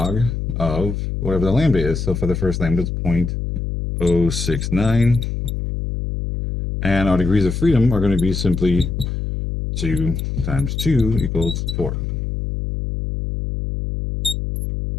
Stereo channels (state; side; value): noise; left; hum, 3 dB below the sound